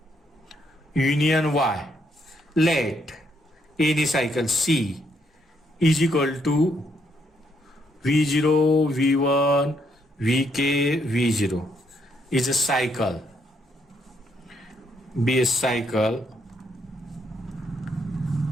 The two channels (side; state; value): both; normal; correlation 0.74